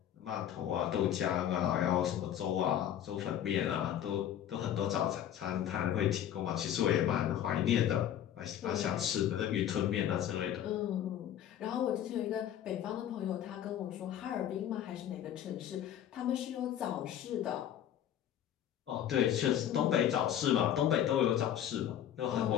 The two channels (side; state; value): right; quieter; 10.6 dB